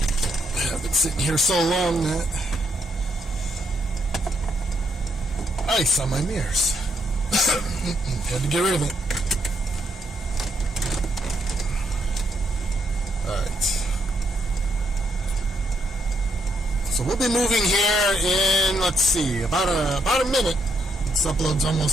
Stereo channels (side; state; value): both; normal; correlation 0.76